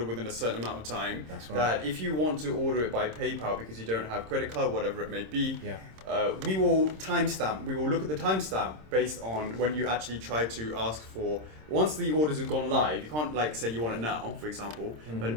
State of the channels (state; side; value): late; left; 26 ms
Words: within a certain amount of time. That's right. That if you want to order it by PayPal because you don't have credit card, whatever it may be, Yeah. we will timestamp. We will look at the timestamp based on when you actually try to ask for. Once the orders have gone live, you can't say you want it now, for example. Mm-hmm.